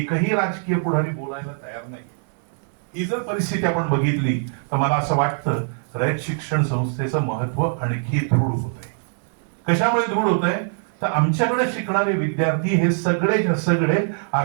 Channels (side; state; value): left; silent; digital silence